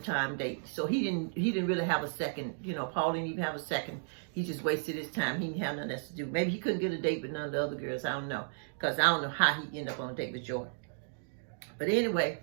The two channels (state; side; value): silent; left; digital silence